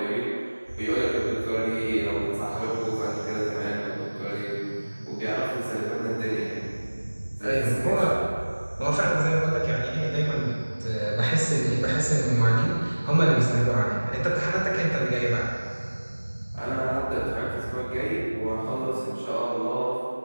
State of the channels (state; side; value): inverted; both; correlation -1.00